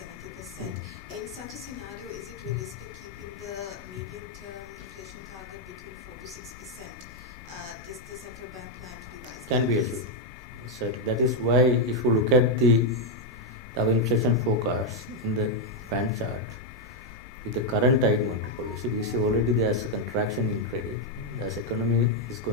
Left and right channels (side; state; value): both; normal; correlation 0.01